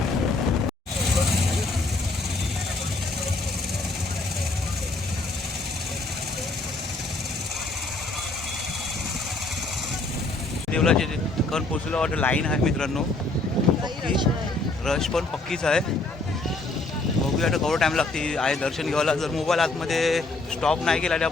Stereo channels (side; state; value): right; quieter; 3.1 dB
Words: देवळाचे ठिकाण पोचलो. वाटतं लाईन आहे मित्रांनो, पक्की रश पण पक्कीच आहे. बघूया आता केवढा टाईम लागते आहे दर्शन घ्यायला. जर मोबाईल आतमध्ये स्टॉप नाही केला तर